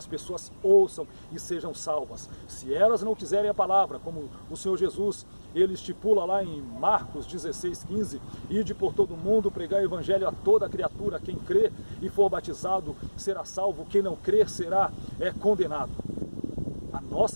pessoas ouçam e sejam salvas. Se elas não quiserem a palavra, como o Senhor Jesus, ele estipula lá em Marcos 16:15, ide por todo mundo pregar o Evangelho a toda criatura, quem crê e for batizado será salvo, quem não crer será condenado. A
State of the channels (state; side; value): inverted; both; correlation -1.00